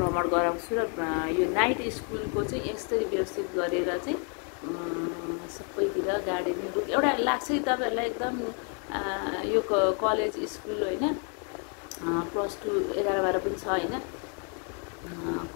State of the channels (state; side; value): quieter; right; 40.0 dB